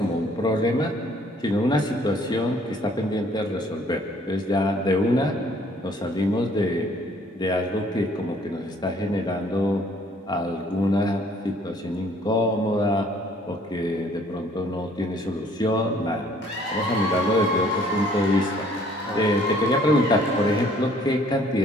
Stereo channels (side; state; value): both; normal; correlation 0.60